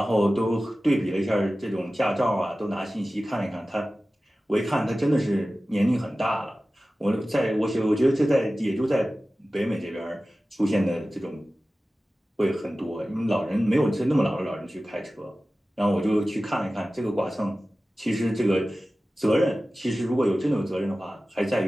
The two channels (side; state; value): both; normal; correlation 0.96